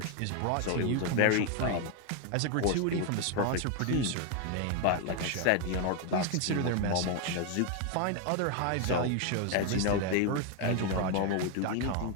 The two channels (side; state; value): both; different; correlation 0.01